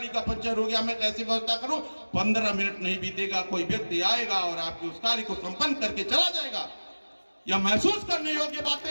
का पंचर हो गया, मैं कैसे व्यवस्था करूं। 15 मिनट नहीं बीतेगा, कोई व्यक्ति आएगा और आपके उस कार्य को संपन्न करके चला जाएगा। यह महसूस करने योग्य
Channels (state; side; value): inverted; both; correlation -1.00